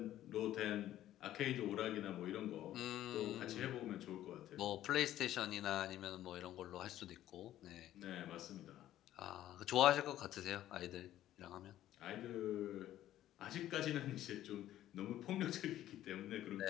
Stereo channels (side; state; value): right; quieter; 13.0 dB